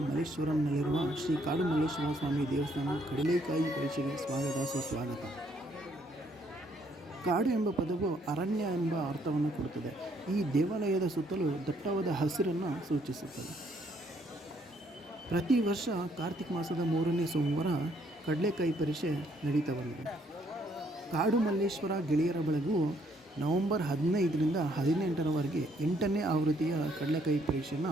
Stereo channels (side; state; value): both; normal; correlation 0.69